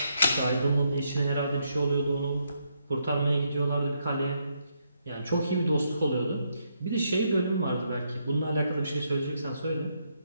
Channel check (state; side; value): inverted; both; correlation -0.77